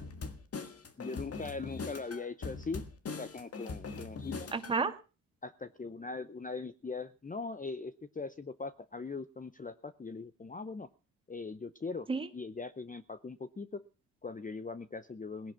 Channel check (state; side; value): normal; both; correlation 0.35